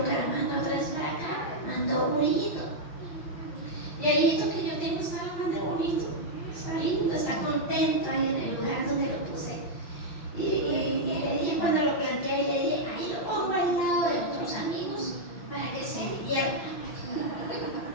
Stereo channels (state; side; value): late; right; 5.8 ms